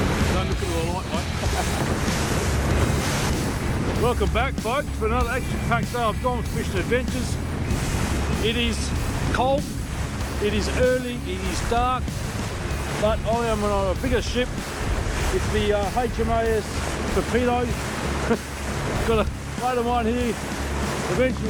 Don't look at the light, mate. Welcome back, folks, for another action-packed day of Gone Fishing Adventures. It is cold, it is early, it is dark, but I am on a bigger ship. It's the HMAS Torpedo. Got a mate of mine here. Eventually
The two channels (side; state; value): both; identical; correlation 1.00